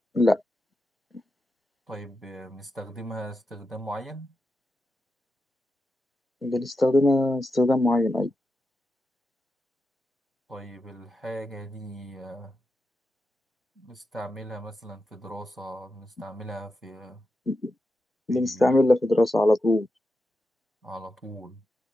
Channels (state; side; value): normal; both; correlation 0.88